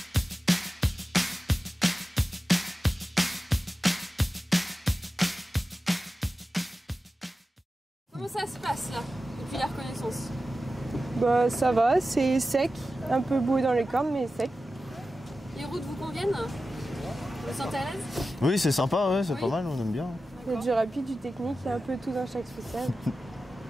Comment ça se passe là, depuis la reconnaissance? Bah ça va, c'est sec, un peu boueux dans les cornes mais sec. Les routes vous conviennent? Vous vous sentez à l'aise? Oui, c'est sympa, ouais, c'est Oui. pas mal, on aime bien. Il y a du rapide, du technique, il y a un peu tout dans chaque spécial.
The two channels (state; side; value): normal; both; correlation 0.93